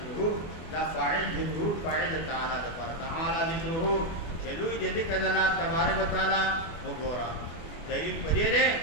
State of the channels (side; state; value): right; late; 24 ms